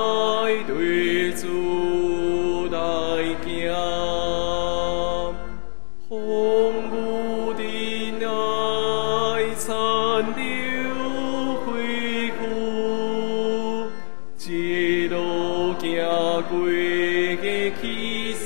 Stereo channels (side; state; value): right; silent; 57 dB below the other